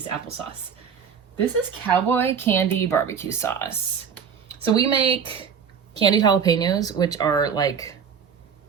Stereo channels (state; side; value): quieter; left; 7.0 dB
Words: applesauce. This is cowboy candy barbecue sauce. So we make candied jalapenos, which are like